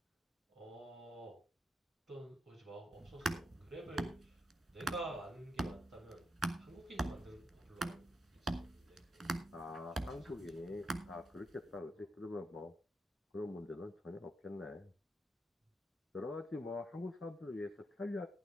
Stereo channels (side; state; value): both; normal; correlation 0.82